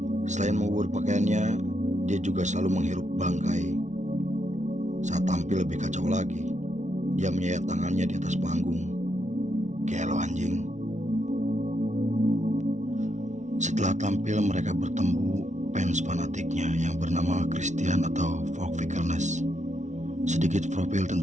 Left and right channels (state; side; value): late; left; 0.35 ms